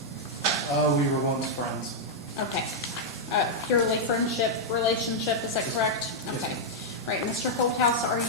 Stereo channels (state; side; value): normal; both; correlation -0.05